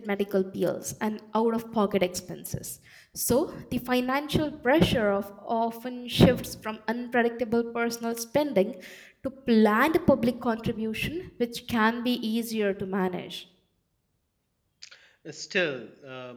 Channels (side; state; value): both; identical; correlation 1.00